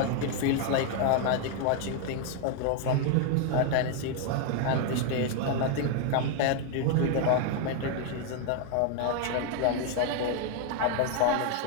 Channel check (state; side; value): different; both; correlation 0.00